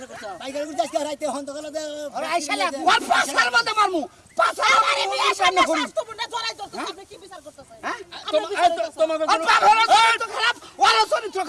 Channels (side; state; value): both; identical; correlation 1.00